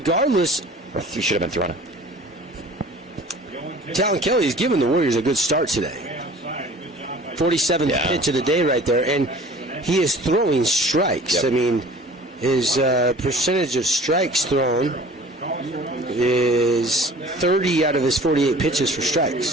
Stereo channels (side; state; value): both; normal; correlation 0.46